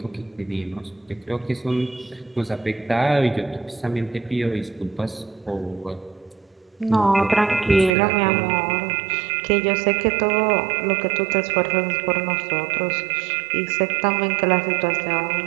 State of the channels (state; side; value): drops out; left; at 7.9 s